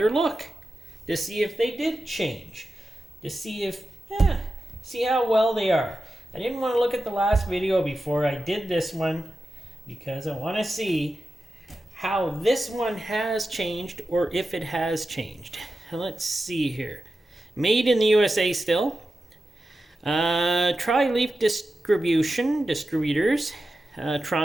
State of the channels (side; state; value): both; normal; correlation 0.92